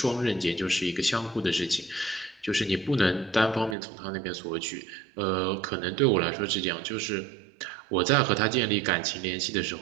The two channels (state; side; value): drops out; left; at 3.8 s